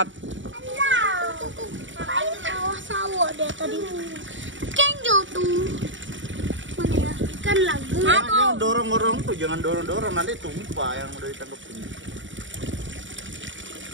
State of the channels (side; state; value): left; late; 0.55 ms